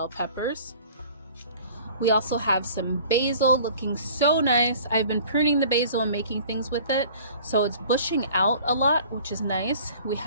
peppers. We also have some basil looking so nice. I've been pruning the basil and making things with it, so it's bushing out a lot, which is nice. We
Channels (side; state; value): both; inverted; correlation -0.48